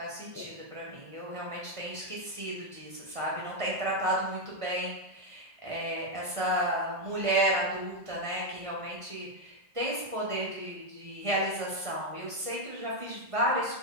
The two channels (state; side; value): late; left; 1.5 ms